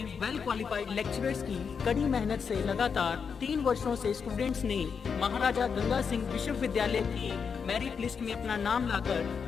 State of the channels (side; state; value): right; quieter; 6.2 dB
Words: वेल क्वालिफाइड लेक्चरर्स की कड़ी मेहनत से लगातार 3 वर्षों से स्टूडेंट्स ने महाराजा गंगा सिंह विश्वविद्यालय की मेरिट लिस्ट में अपना नाम लाकर